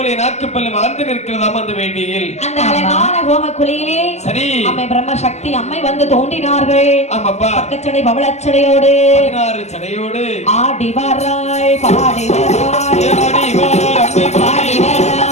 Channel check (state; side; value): late; right; 0.33 ms